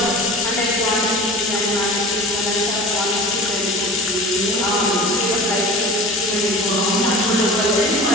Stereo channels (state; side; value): normal; both; correlation 0.37